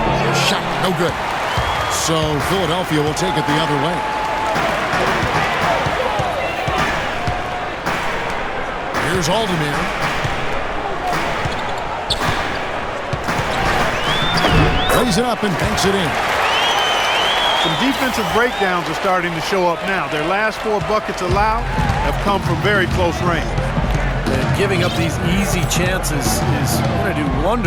Shot, no good. So Philadelphia will take it the other way. Here's Aldemir. Lays it up and banks it in. Some defensive breakdowns are starting to show up now. Their last 4 buckets allowed have come from very close range. And giving up these easy chances is going to do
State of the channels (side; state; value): both; identical; correlation 1.00